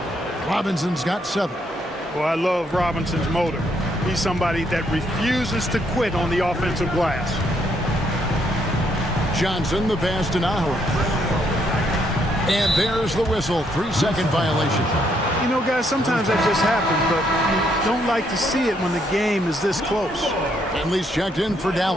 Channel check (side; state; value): both; normal; correlation 0.73